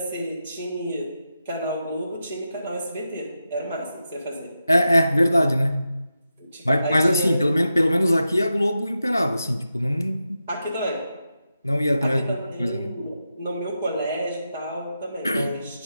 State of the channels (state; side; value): inverted; both; correlation -0.89